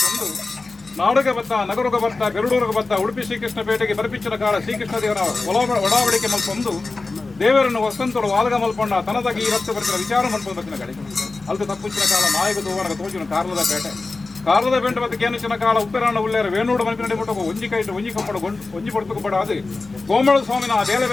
ನಾಡುಗೆ ಬತ್ತ ನಗರಗೆ ಬತ್ತ ಬೆರಡೂರಿಗೆ ಬತ್ತ ಉಡುಪಿ ಶ್ರೀಕೃಷ್ಣ ಪೇಟೆಗೆ ಬರಪಿಚ್ಚಿನ ಕಾಲ ಶ್ರೀಕೃಷ್ಣ ದೇವರ ಒಡಾವಡಿಕೆ ಮಲ್ಪೊಂದು ದೇವರನ್ನು ವಸಂತೋಡು ವಾಲಗ ಮಲ್ಪೊಂಡ ತನದಾಗಿ ಈ ರಕ್ತ ಬರ್ತಿನ ವಿಚಾರ ಮಲ್ಪೊಂದು ಬತ್ತಿನ ಗಳಿಗೆ ಅಲ್ದು ತಪ್ಪುಚ್ಚಿನ ಕಾಲ ಮಾಯಗ ದೋವನಗ ತೋಚಿನ ಕಾರ್ಲದ ಪೇಟೆ ಕಾರದ ಪೇಂಟ ಬತ್ತ ಕೇನಿಚಿನ ಕಾಲ ಉಪ್ಪಿರಾಣ ಉಳ್ಳೇರ ವೇಣೂಡು ಮಲ್ಪಿನ ಮುಟ್ಟಕ ಒಂಜಿ ಕೈಟು ಒಂಜಿ ಕಮ್ಮಡು ಒಂಜಿ ಪಡ್ತುಕು ಬಡ ಅದು ಗೋಮಳ ಸ್ವಾಮಿನ ಬೇಲೆ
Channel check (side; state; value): right; quieter; 3.6 dB